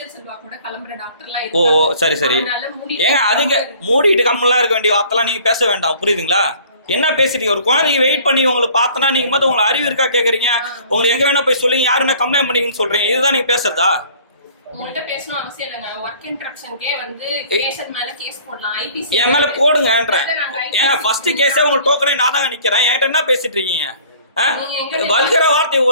ஓ சரி சரி. ஏங்க அதுக்கு மூடிட்டு கம்மெல்லாம் இருக்க வேண்டிய வார்த்தைலாம் நீங்கள் பேச வேண்டாம், புரியுதுங்களா? என்ன பேசுறீங்க? ஒரு குழந்தைக்கு வெயிட் பண்ணி உங்களை பார்த்தனா நீங்க மட்டும் உங்களுக்கு அறிவு இருக்கா கேக்குறீங்க? உங்களுக்கு எங்க வேணா போய் சொல்லுங்க, யாரு என்ன கம்ப்ளைண்ட் பண்ணீங்கன்னு சொல்றீங்க. இதுதான் நீங்க பேசுறதா? உங்கள்ட்ட பேசணும் அவசியம் இல்லைங்க. வொர்க் இன்டரப்ஷன்க்கே வந்து கேஷன் மேல கேஸ் போடலாம். ஐபிசி என் மேல போடுங்கன்றேன். ஏங்க ஃபர்ஸ்ட் கேஸே உங்களுக்கு டோக்கனே நான் தாங்க நிக்கிறேன். என்கிட்ட என்ன பேசிட்டு இருக்கீங்க? வல்கர வார்த்தை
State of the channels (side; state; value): both; inverted; correlation -0.52